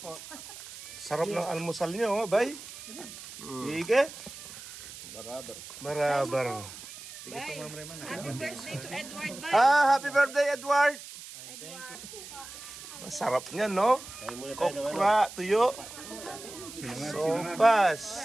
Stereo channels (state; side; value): noise; right; hiss, 14 dB below the sound